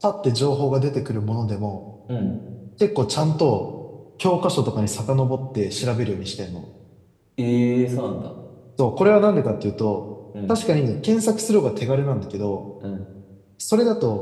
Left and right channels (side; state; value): both; identical; correlation 1.00